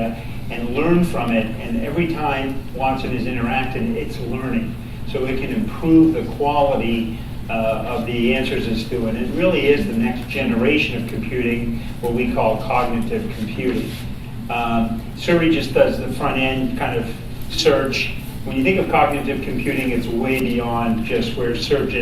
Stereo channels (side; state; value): both; identical; correlation 1.00